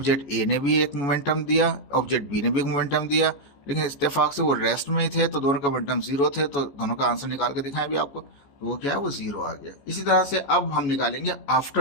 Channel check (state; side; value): late; right; 14 ms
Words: ए ने भी एक मोमेंटम दिया, ऑब्जेक्ट बी ने भी एक मोमेंटम दिया, लेकिन इत्तेफाक से वो रेस्ट में ही थे तो दोनों का मोमेंटम 0 थे, तो दोनों का आंसर निकाल के दिखाएं भी आपको, तो वो क्या है, वो 0 आ गया। इसी तरह से अब हम निकालेंगे